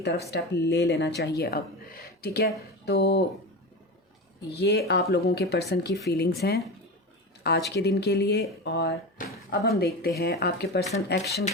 स्टेप ले लेना चाहिए अब। ठीक है, तो ये आप लोगों के पर्सन की फीलिंग्स हैं आज के दिन के लिए। और अब हम देखते हैं आपके पर्सन एक्शन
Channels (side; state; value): both; normal; correlation 0.24